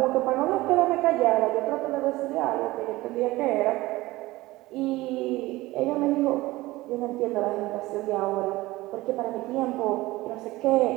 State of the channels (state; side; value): quieter; left; 19.1 dB